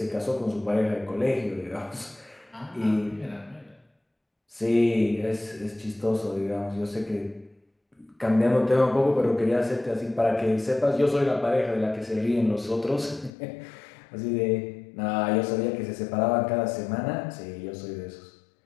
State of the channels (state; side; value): drops out; right; at 13.3 s